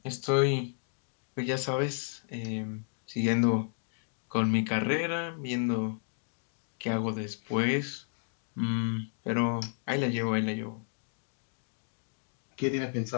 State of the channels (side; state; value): right; silent; digital silence